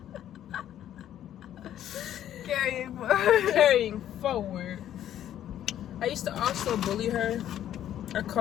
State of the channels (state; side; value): quieter; right; 11.3 dB